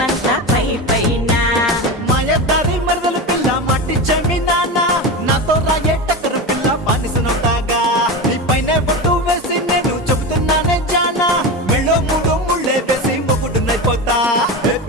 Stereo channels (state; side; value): normal; both; correlation 0.22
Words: పై పైన మాయదారి మరదల పిల్ల మట్టి జమీనానా నాతో రాయే టక్కరు పిల్ల బానిసనవుతాగా నీ పైన బొట్టు వేసి నేను చెబుతున్నానే జానా మెళ్ళో మూడు ముళ్ళే వేసి మొగుడునైపోతా